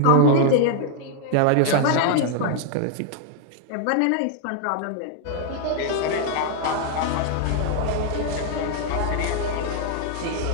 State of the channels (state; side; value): different; both; correlation 0.00